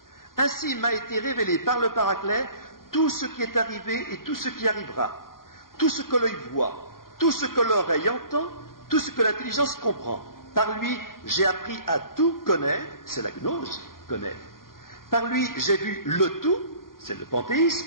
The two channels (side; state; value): right; late; 0.91 ms